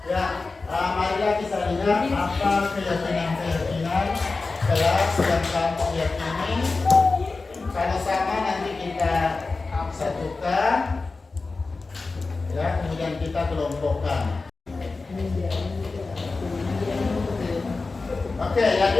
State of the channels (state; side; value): quieter; right; 3.8 dB